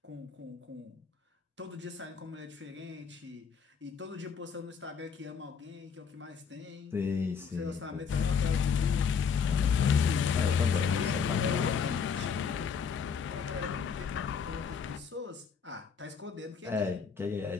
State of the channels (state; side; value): quieter; right; 6.4 dB